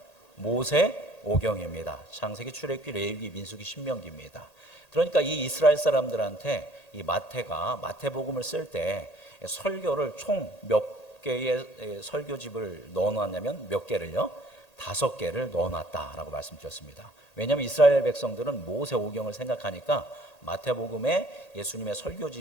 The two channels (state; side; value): late; right; 1.8 ms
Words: 모세오경입니다. 창세기, 출애굽기, 레위기, 민수기, 신명기입니다. 그러니까 이 이스라엘 사람들한테 이 마태가 마태복음을 쓸 때 설교를 총 몇 개의 설교집을 넣어놨냐면 몇 개를요? 5개를 넣어놨다라고 말씀드렸습니다. 왜냐하면 이스라엘 백성들은 모세오경을 생각하니까 마태복음에 예수님의